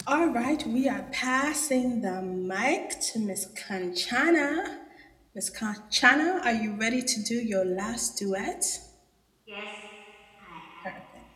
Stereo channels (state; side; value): identical; both; correlation 1.00